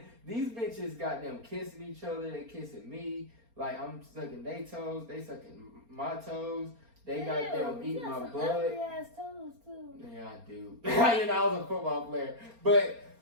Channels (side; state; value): left; late; 4.3 ms